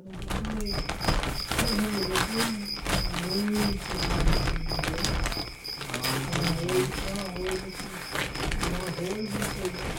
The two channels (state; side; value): identical; both; correlation 1.00